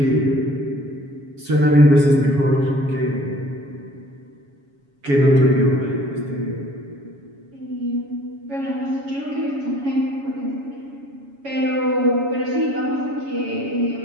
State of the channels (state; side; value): late; left; 7.2 ms